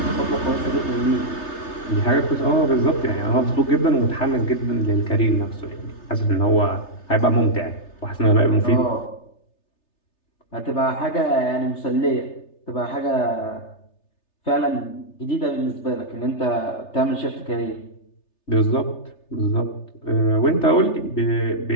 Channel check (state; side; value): late; right; 3.3 ms